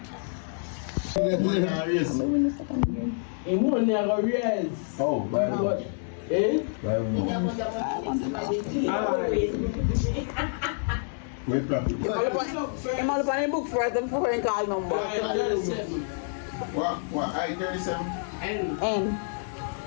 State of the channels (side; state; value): right; silent; 57 dB below the other